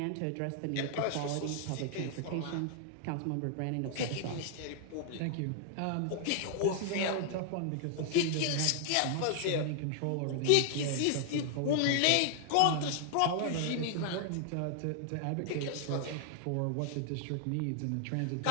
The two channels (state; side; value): different; both; correlation 0.00